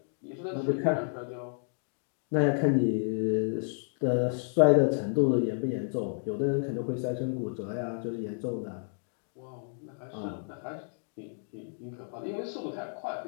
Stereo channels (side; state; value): right; silent; digital silence